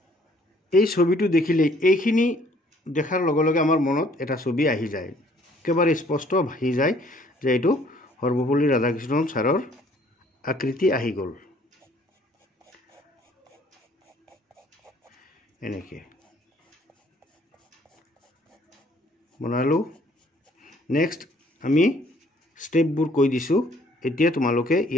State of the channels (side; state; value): both; normal; correlation 0.60